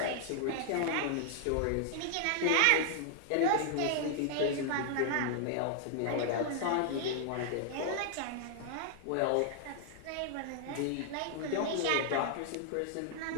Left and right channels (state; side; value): different; both; correlation -0.01